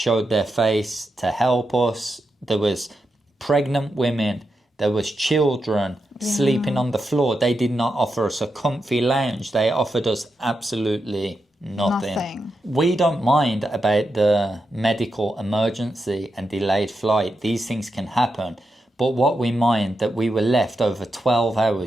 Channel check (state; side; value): normal; both; correlation 0.86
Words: their face to help us. There was pregnant women, there was children sleeping on the floor. They did not offer us a comfy lounge. They offered us absolutely nothing. We don't mind about the medical emergency and delayed flight. These things can happen. But what we mind that we were left over 12